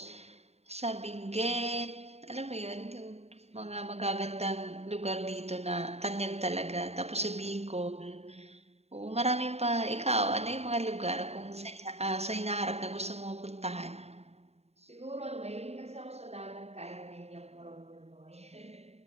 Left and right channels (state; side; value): late; left; 0.31 ms